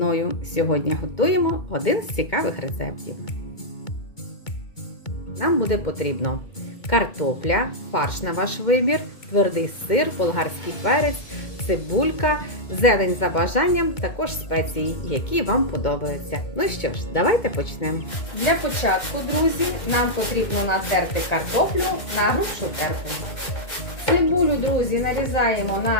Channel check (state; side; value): late; right; 2.1 ms